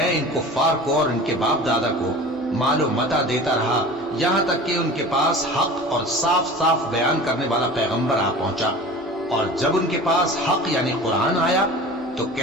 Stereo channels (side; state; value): right; noise; hum, 29 dB below the sound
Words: ان کفار کو اور ان کے باپ دادا کو مال و متاع دیتا رہا یہاں تک کہ ان کے پاس حق اور صاف صاف بیان کرنے والا پیغمبر آ پہنچا، اور جب ان کے پاس حق یعنی قرآن آیا تو